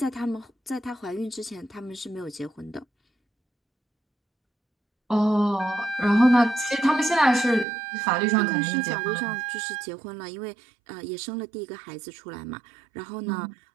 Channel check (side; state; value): left; drops out; at 7.7 s